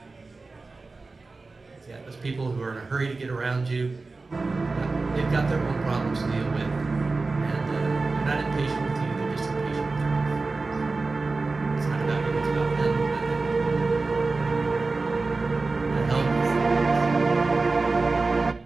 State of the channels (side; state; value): left; quieter; 3.7 dB